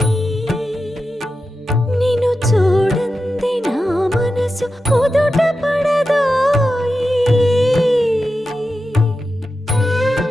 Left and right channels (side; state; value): both; normal; correlation 0.91